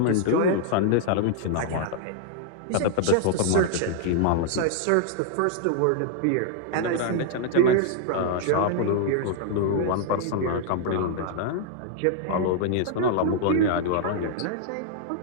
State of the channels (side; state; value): both; different; correlation 0.00